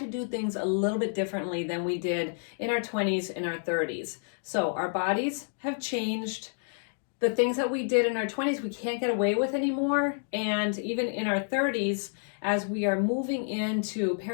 do things a little bit differently than we did in our 20s and our 30s. So our bodies have changed. The things that we did in our 20s we can't get away with anymore, and even in our 30s, as we are moving into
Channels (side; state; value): right; silent; 58 dB below the other